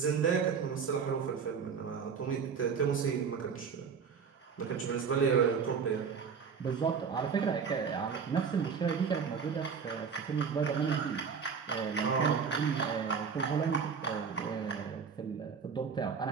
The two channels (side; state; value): left; quieter; 6.2 dB